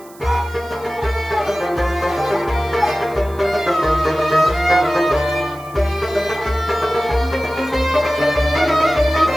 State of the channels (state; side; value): noise; right; hiss, 24 dB below the sound